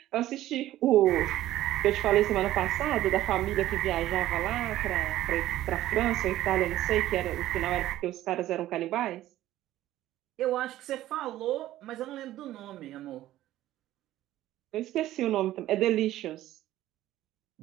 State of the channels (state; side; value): quieter; left; 14.3 dB